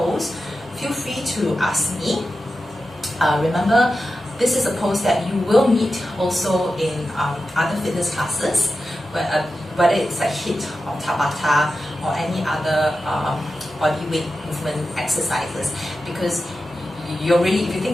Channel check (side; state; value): both; normal; correlation 0.91